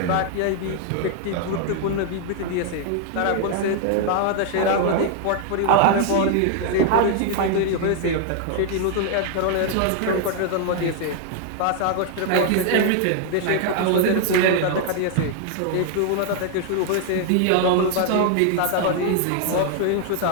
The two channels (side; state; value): both; different; correlation 0.00